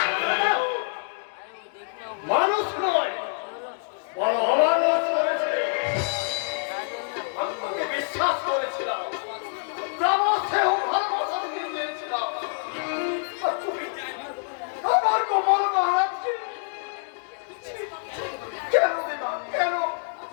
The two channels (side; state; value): right; silent; digital silence